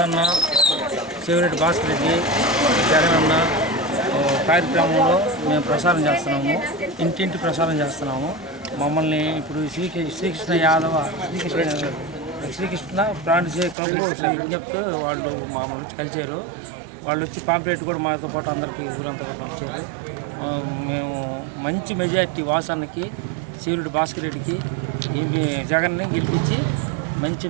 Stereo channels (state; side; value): drops out; left; at 13.8 s